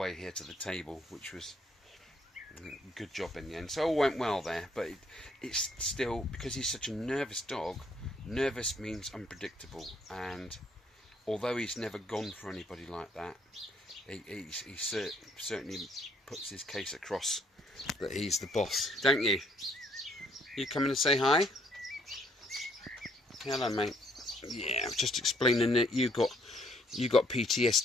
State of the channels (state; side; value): normal; both; correlation 0.67